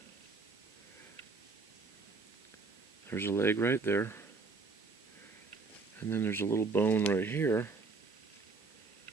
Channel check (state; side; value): quieter; left; 4.2 dB